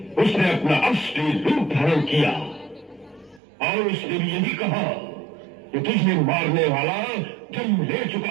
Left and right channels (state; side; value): drops out; left; at 3.4 s